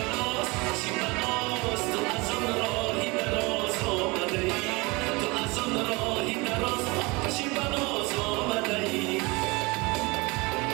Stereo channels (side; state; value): left; quieter; 25.6 dB